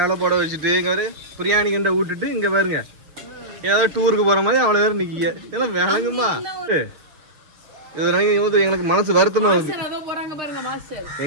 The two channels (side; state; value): left; late; 6.7 ms